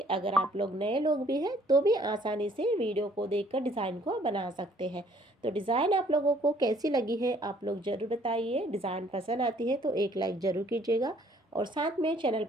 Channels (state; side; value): normal; both; correlation 0.60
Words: अगर आप लोग नए लोग भी हैं तो भी आसानी से वीडियो को देखकर डिज़ाइन को बना सकते हैं। तो डिज़ाइन आप लोगों को कैसी लगी है आप लोग ज़रूर बताइए। डिज़ाइन पसंद आती है तो एक लाइक ज़रूर कीजिएगा और साथ में चैनल